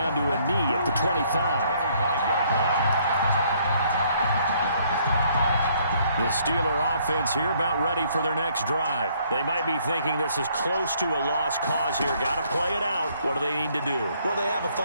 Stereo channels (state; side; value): inverted; both; correlation -0.65